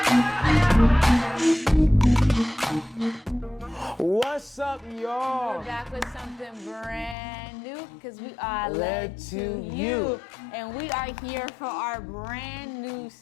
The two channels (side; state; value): right; drops out; at 7.2 s